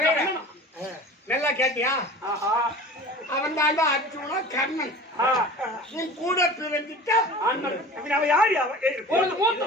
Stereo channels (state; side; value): normal; both; correlation 0.39